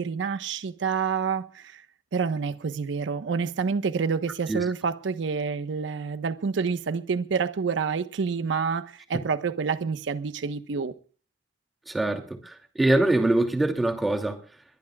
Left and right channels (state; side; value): quieter; left; 3.7 dB